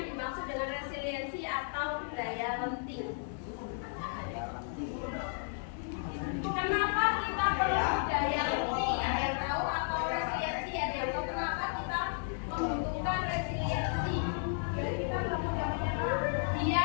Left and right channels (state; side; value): silent; right; digital silence